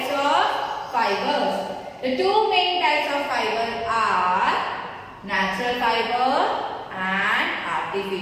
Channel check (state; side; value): identical; both; correlation 1.00